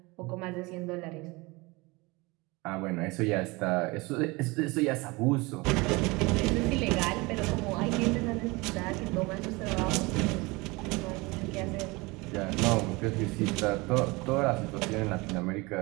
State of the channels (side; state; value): left; quieter; 24.5 dB